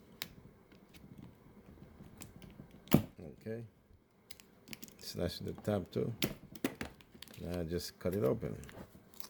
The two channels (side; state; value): both; identical; correlation 1.00